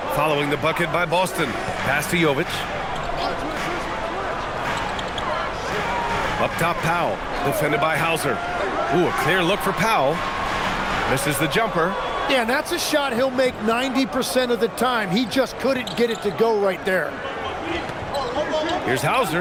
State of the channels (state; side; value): identical; both; correlation 1.00